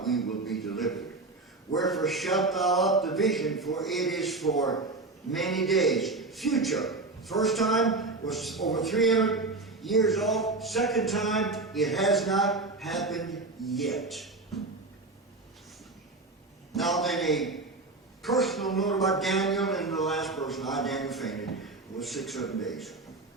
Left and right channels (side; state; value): left; quieter; 3.4 dB